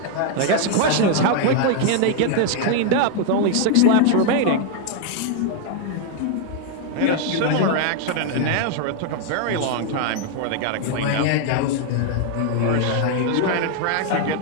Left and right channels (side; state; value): both; different; correlation 0.00